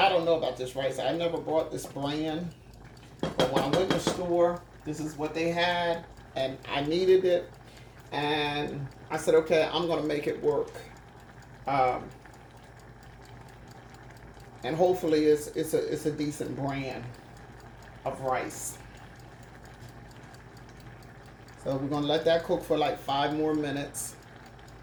don't know about this rice. I never bought this brand, but when I went to the store, this is what they had, and I needed it, and I said, okay, I'm going to make it work. And hopefully it's a decent brand of rice. So we're going to let that cook for like 5 more minutes,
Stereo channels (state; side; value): identical; both; correlation 1.00